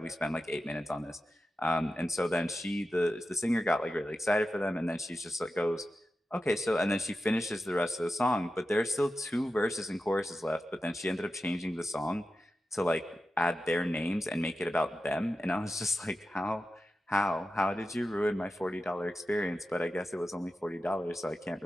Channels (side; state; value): both; normal; correlation 0.92